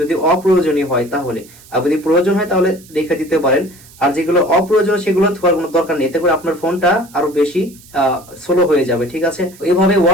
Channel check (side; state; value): right; noise; hiss, 23 dB below the sound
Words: যদি অপ্রয়োজনীয় হয় তাহলে। আর যদি প্রয়োজন হয় তাহলে রেখে দিতে পারেন। আর যেগুলো অপ্রয়োজনীয় সেগুলো থাকার কোনো দরকার নেই, এতে করে আপনার ফোনটা আরো বেশি স্লো হয়ে যাবে, ঠিক আছে। এইভাবে